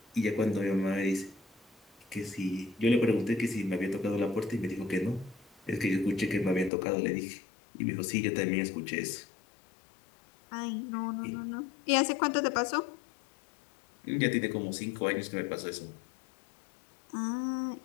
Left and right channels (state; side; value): drops out; right; at 6.7 s